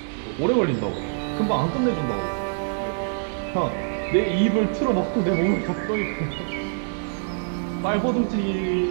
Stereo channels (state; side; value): silent; left; digital silence